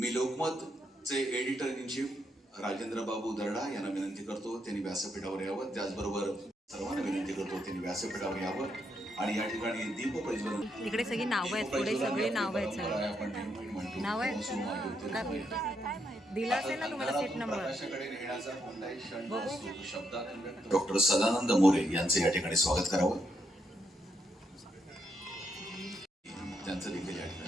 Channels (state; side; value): normal; both; correlation 0.78